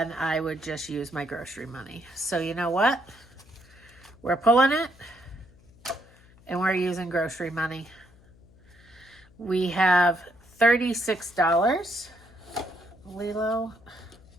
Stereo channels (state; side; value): noise; left; hum, 27 dB below the sound